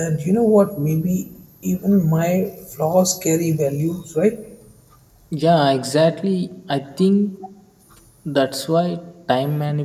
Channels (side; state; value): both; identical; correlation 1.00